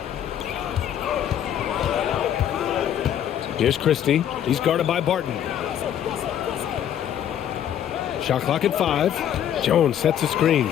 Here's Christie. He's guarded by Barton. Shot clock at 5. Jones sets a screen.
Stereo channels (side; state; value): right; quieter; 10.1 dB